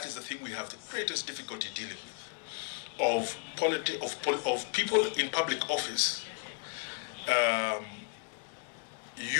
is the thing we have the greatest difficulty dealing with, of people in public office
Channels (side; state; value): right; quieter; 38.4 dB